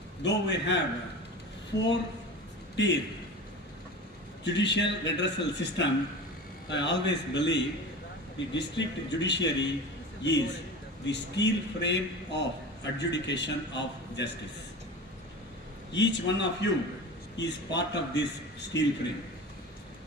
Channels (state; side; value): normal; both; correlation 0.32